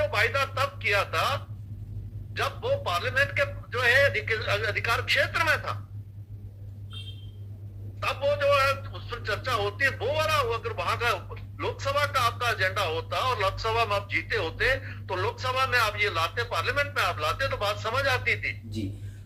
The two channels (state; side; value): identical; both; correlation 1.00